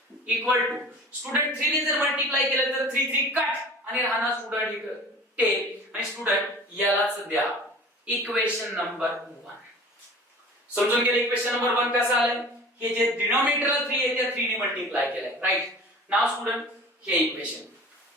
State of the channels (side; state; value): both; normal; correlation 0.42